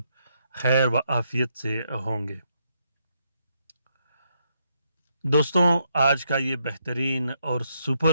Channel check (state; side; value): inverted; both; correlation -0.77